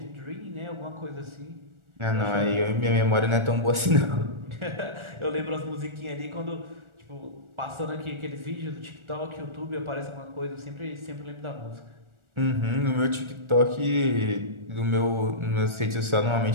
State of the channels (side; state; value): left; late; 1.4 ms